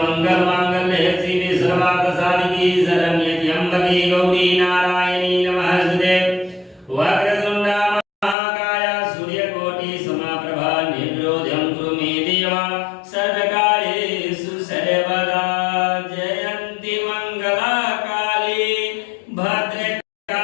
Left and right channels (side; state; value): right; drops out; at 8.3 s